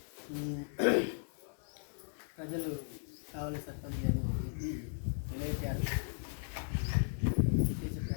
ప్రజలు కావలి సర్పంచ్ గారిని తెలియజేయాలి చేసే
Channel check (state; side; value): silent; right; digital silence